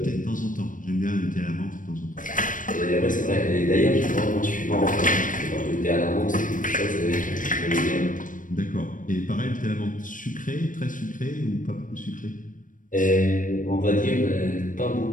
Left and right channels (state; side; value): late; right; 0.38 ms